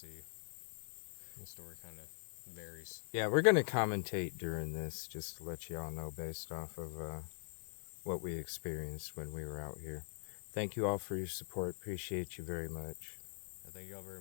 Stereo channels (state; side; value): silent; right; digital silence